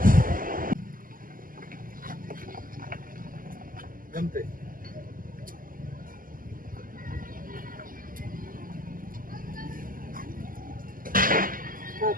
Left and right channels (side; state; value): left; late; 0.41 ms